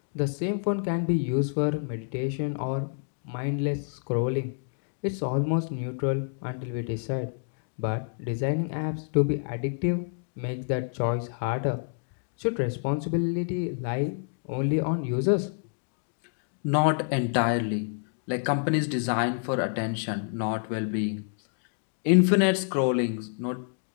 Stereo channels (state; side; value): silent; right; digital silence